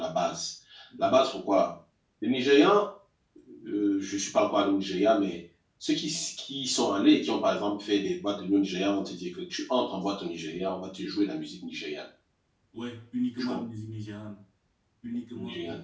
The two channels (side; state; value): both; identical; correlation 1.00